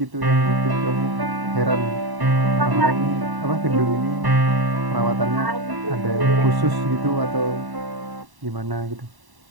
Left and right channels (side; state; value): left; late; 1.1 ms